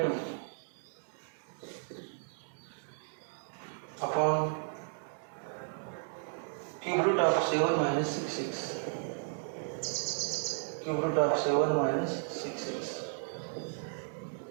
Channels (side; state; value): left; silent; digital silence